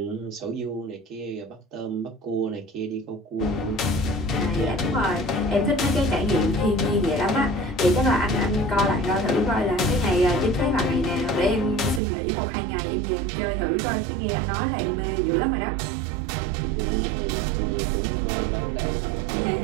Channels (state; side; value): drops out; left; at 12.0 s